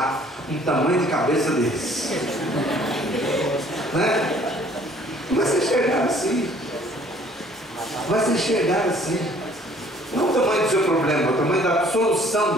um tamanho de cabeça desse. Né? Vai se enxergar assim. Vai se enxergar assim. Não o tamanho do seu problema, o tamanho da solução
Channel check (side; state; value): both; normal; correlation 0.57